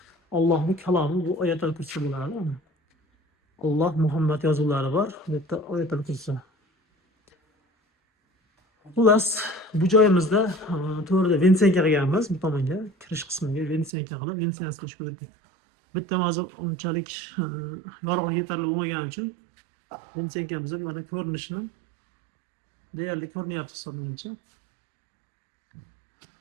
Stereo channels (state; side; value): drops out; left; at 13.9 s